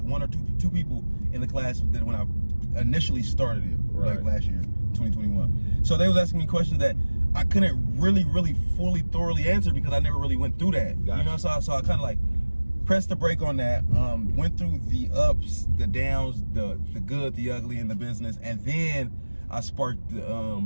one or two people in the class that when I initially started it, like last year, 2021. So they was asking me questions that I couldn't really fully thoroughly answer because I never really went through that. Gotcha. You know, so I kind of like pressed the brake on that, went through the ups, the downs, the good, the ugly in the business, and then I sparked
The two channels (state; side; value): inverted; both; correlation -1.00